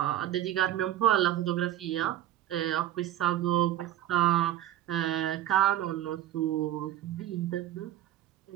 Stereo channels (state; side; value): quieter; left; 12.6 dB